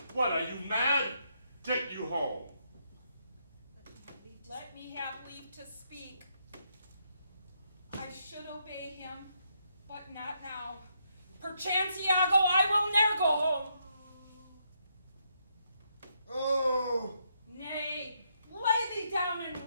What, are you mad? Get you home. Let me have leave to speak. I should obey him, but not now. Perchance, Iago, I will ne'er go home. Oh! Nay, lay thee down and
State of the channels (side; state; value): both; inverted; correlation -0.77